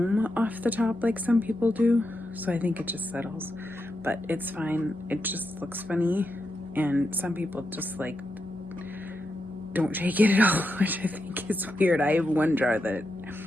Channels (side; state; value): both; normal; correlation 0.85